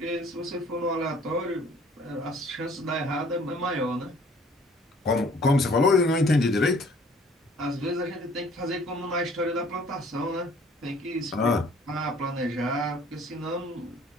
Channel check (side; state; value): both; normal; correlation 0.55